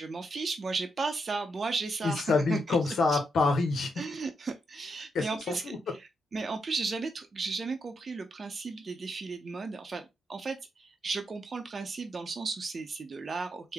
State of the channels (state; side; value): normal; both; correlation 0.81